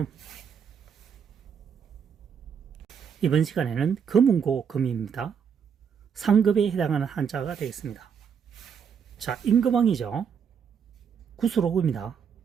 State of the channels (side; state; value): left; quieter; 7.2 dB